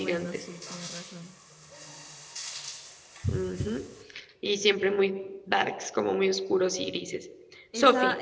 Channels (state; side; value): identical; both; correlation 1.00